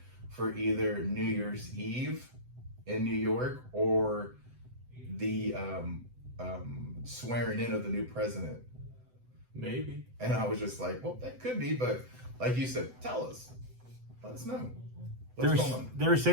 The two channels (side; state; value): left; late; 7.9 ms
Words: for either New Year's Eve in New York or the swearing in of the new president. Maybe. And I was just like, well, that could be, but like you said, tell us. Let us know. What's going on? They were